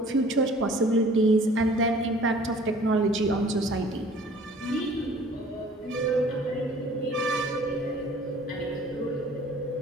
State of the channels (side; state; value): both; normal; correlation 0.51